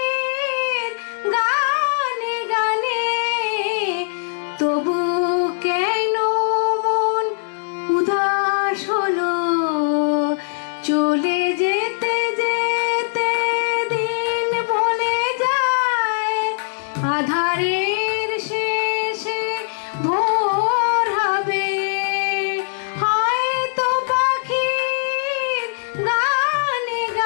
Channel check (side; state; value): right; silent; 65 dB below the other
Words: গানে গানে তবু কেন মন উদাস হলো। চলে যেতে যেতে দিন বলে যায়, আধারের শেষে ভোর হবে। হয়তো পাখির গানে